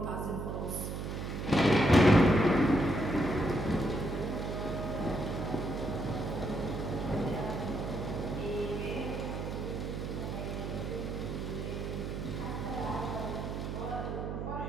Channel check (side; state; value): right; noise; hum, 4 dB below the sound